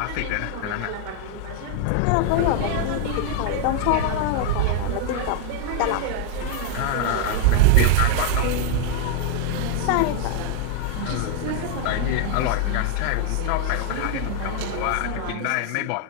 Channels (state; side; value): different; both; correlation 0.00